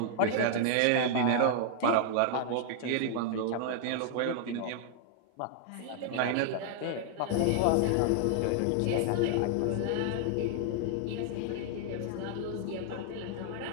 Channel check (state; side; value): different; both; correlation 0.00